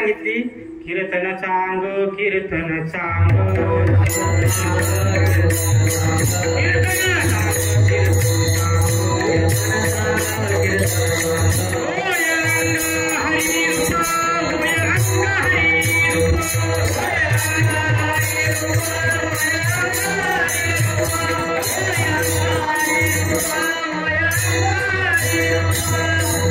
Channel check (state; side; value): identical; both; correlation 1.00